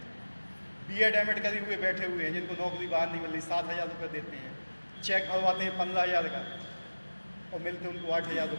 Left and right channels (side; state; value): both; inverted; correlation -1.00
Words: B.Ed, M.Ed करे हुए बैठे हुए हैं, जिनको नौकरी बाहर नहीं मिल रही, 7,000 रुपये देते हैं, चेक भरवाते हैं 15,000 का और मिलते उनको 8,000